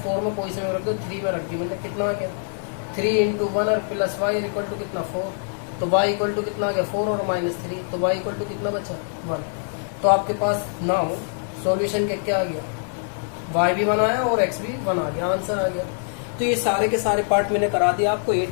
4 में कोई से में रख दो, 3 में रख दी मैंने, कितना आ गया 3 इंटू 1 और प्लस वाई इक्वल टू कितना 4, तो y इक्वल टू कितना आ गया 4 और -3, तो y इक्वल टू कितना बचा 1। तो आपके पास नाउ सॉल्यूशन क्या आ गया, y भी 1 आया और x भी 1 आ गया, आंसर आ गया। तो ये सारे के सारे पार्ट मैंने करा दिया आपको,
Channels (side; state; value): right; silent; digital silence